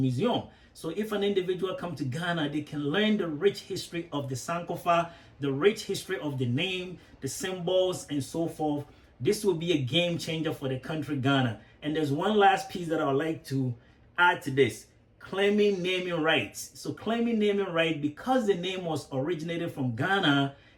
So if an individual come to Ghana, they can learn the rich history of the Sankofa, the rich history of the name, the symbols, and so forth. This will be a game changer for the country Ghana. And there's one last piece that I would like to add to this. Claiming naming rights. So claiming naming right, because the name was originated from Ghana,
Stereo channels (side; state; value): both; identical; correlation 1.00